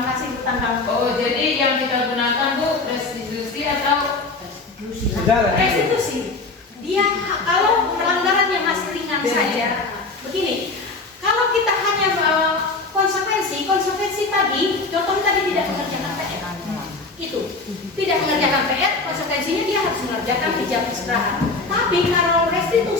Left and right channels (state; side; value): quieter; right; 3.7 dB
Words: kasih Bu Tanggang. Oh, jadi yang kita gunakan Bu restitusi atau restitusi. Dia kalau pelanggaran yang masih ringan saja, begini. Kalau kita hanya konsekuensi tadi, contohnya tadi tidak mengerjakan PR. Itu tidak mengerjakan PR, konsekuensinya dia harus mengerjakan di jam istirahat. Tapi kalau